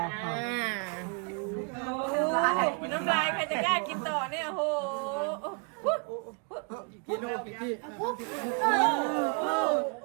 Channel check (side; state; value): left; quieter; 37.6 dB